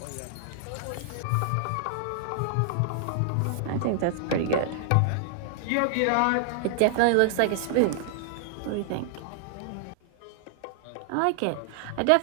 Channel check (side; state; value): both; different; correlation -0.01